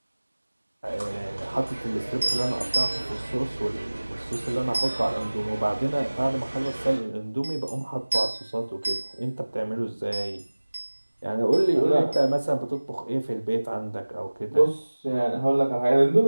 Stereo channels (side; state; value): both; inverted; correlation -1.00